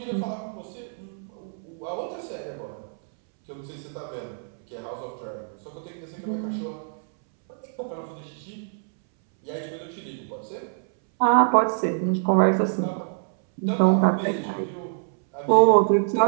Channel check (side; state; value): left; silent; 61 dB below the other